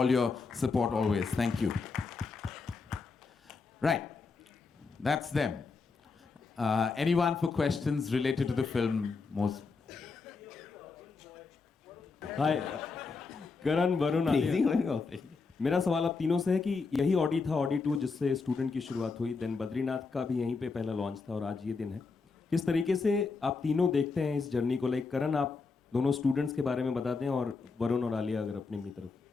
your support always. Thank you. Right. That's them. Anyone for questions related to the film? हाय करण, वरुण, आलिया। मेरा सवाल आप तीनों से है कि यही Audi था, Audi 2, जिससे स्टूडेंट की शुरुआत हुई, देन बद्रीनाथ का भी यहीं पे पहला लॉन्च था और आज ये दिन है। किस तरीके से आप तीनों देखते हैं इस जर्नी को? लाइक करण, आप दोनों स्टूडेंट्स के बारे में बता दें, और वरुण और आलिया अगर अपनी तरफ।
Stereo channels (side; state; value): right; quieter; 4.5 dB